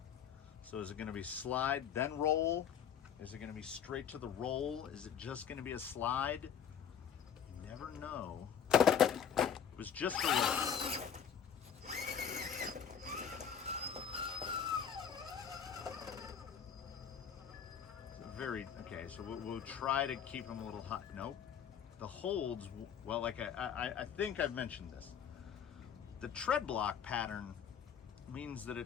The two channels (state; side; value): quieter; right; 8.1 dB